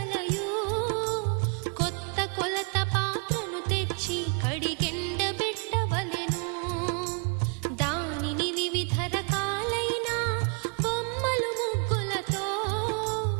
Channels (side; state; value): left; quieter; 36.8 dB